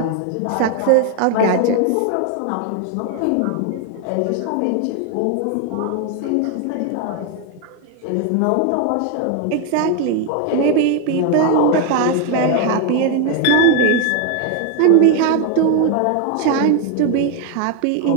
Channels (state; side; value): different; both; correlation 0.01